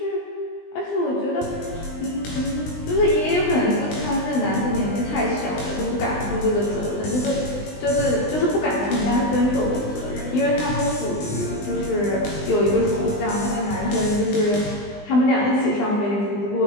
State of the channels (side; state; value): right; late; 20 ms